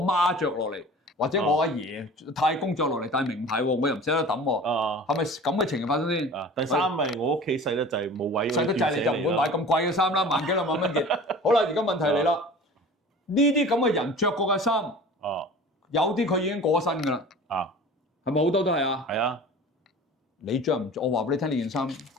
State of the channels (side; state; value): both; normal; correlation 0.41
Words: 媽着落嚟，或者我阿爺太公着落嚟戴名牌喎，我又唔捨得抌喎。係咪咁嘅情形發生先？第三咪我屋企細得滯冇位。細得滯你就唔會買咁貴嘅衫啦，萬幾兩萬蚊件。好啦，而家問題嚟啦。呢啲咁嘅人着過嘅衫，有啲佢已經過身㗎啦，係咪好多都係啊？係啊，你着唔着？我話俾你聽，呢件衫